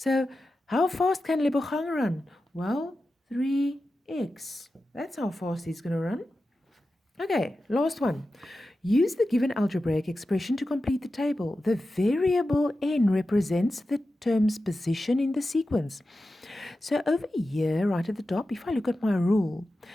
how fast can Lebochang run? Well, 3x. That's how fast he's going to run. Okay, last one. Use the given algebraic expression to complete the table. The variable n represents the term's position in the sequence. So over here, right at the top, if I look at my rule,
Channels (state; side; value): normal; both; correlation 0.92